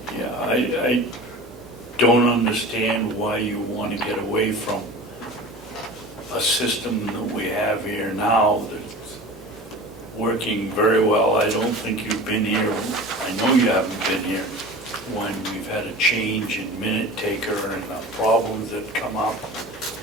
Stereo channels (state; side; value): normal; both; correlation 0.36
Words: Yeah, I don't understand why you want to get away from a system that we have here now that's working very well. I don't think you've been here, I know you haven't been here, when we've had a change in minute taker and the problems that come up.